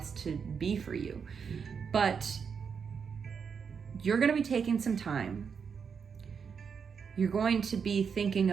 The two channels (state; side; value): quieter; left; 6.3 dB